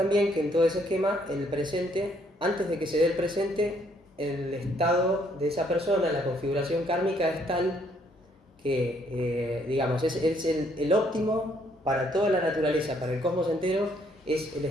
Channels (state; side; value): normal; both; correlation 0.68